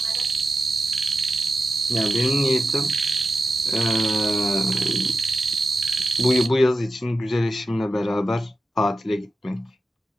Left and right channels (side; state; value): both; normal; correlation 0.91